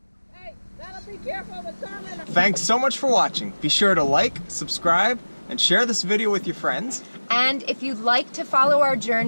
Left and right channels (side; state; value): both; inverted; correlation -1.00